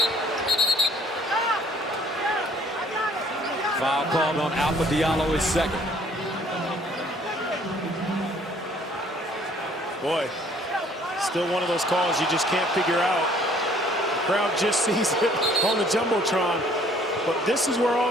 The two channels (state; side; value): normal; both; correlation 0.58